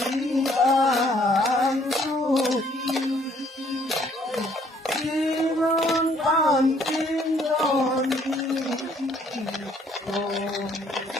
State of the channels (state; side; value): normal; both; correlation 0.63